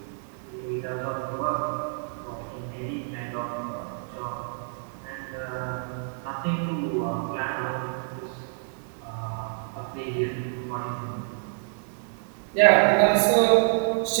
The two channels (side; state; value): left; silent; digital silence